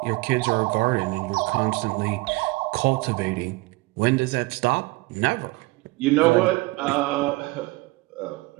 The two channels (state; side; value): quieter; left; 22.6 dB